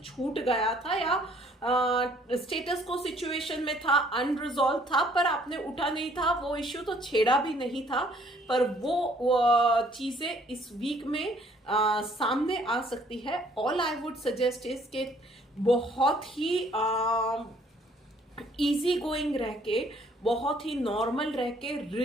गया था, या स्टेटस को सिचुएशन में था, अनरिजॉल्व था, पर आपने उठा नहीं था, वो इश्यू तो छेड़ा भी नहीं था, पर वो चीजें इस वीक में सामने आ सकती है। All I would suggest is के बहुत ही इजी गोइंग रह के, बहुत ही नॉर्मल रह के,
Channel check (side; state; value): both; normal; correlation 0.61